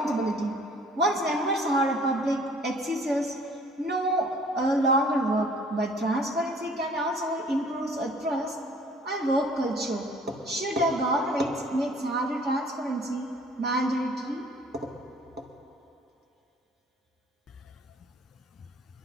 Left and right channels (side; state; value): both; normal; correlation 0.54